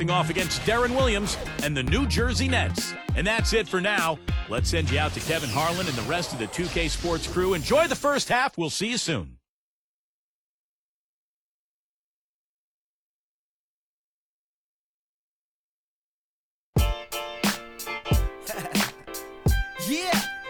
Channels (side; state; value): both; identical; correlation 1.00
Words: off against Deron Williams and the New Jersey Nets. And that's it for now. Let's send you out to Kevin Harlan and the rest of the 2K Sports crew. Enjoy the first half. We'll see you soon. Yeah,